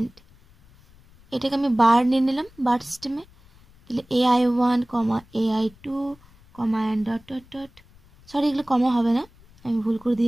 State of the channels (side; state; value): left; noise; rumble, 27 dB below the sound